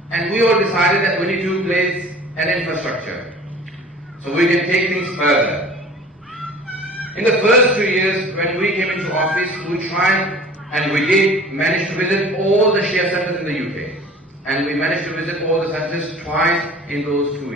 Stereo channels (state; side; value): normal; both; correlation 0.45